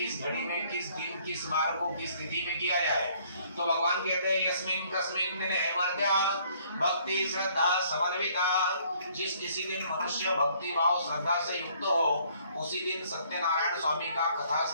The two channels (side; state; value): both; inverted; correlation -0.62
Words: घड़ी में, किस दिन, किस बार को, किस तिथि में किया जाए। तो भगवान कहते हैं यस्मिन् कस्मिन् दिने मर्त्या भक्ति श्रद्धा समन्विता। जिस किसी दिन मनुष्य भक्ति भाव श्रद्धा से युक्त हो उसी दिन सत्यनारायण स्वामी का कथा